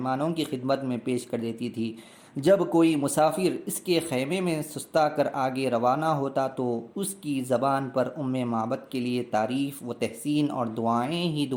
کی خدمت میں پیش کر دیتی تھی۔ جب کوئی مسافر اس کے خیمے میں سستا کر آگے روانہ ہوتا تو اس کی زبان پر معبد کے لیے تعریف و تحسین اور دعائیں ہی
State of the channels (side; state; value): both; identical; correlation 1.00